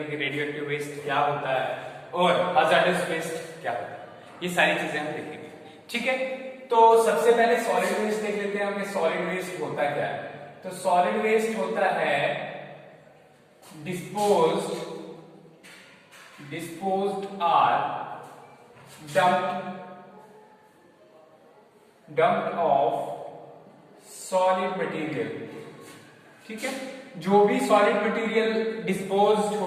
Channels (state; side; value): identical; both; correlation 1.00